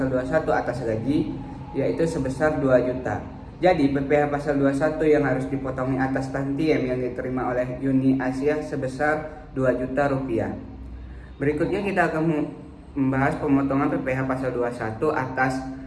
21 atas gaji, yaitu sebesar 2 juta. Jadi PPh pasal 21 yang harus dipotongi atas tantiem yang diterima oleh Yuni Asia sebesar 2 juta rupiah. Berikutnya kita akan membahas pemotongan PPh pasal 21 atas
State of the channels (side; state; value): both; identical; correlation 1.00